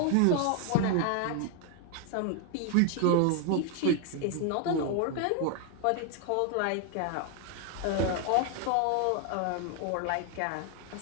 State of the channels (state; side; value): different; both; correlation 0.01